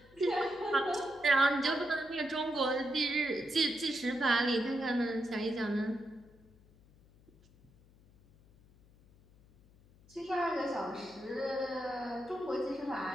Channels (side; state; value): left; noise; hum, 27 dB below the sound